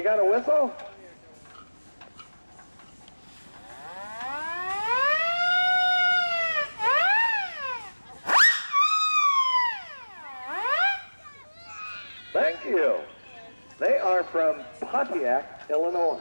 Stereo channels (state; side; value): inverted; both; correlation -1.00